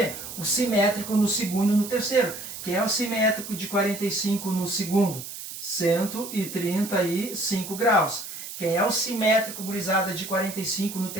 O simétrico no segundo e no terceiro. Quem é o simétrico de 45 no segundo? 135 graus. Quem é o simétrico, gurizada, de 45 no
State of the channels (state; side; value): noise; right; hiss, 10 dB below the sound